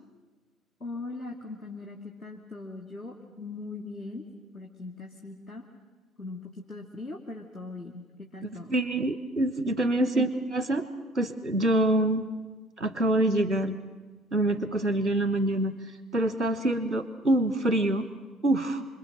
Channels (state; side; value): normal; both; correlation 0.54